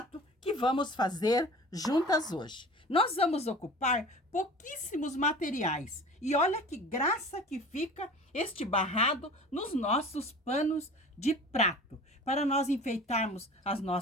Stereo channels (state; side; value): normal; both; correlation 0.41